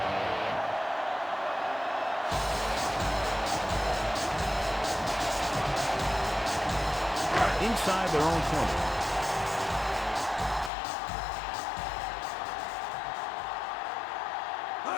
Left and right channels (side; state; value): right; drops out; at 10.7 s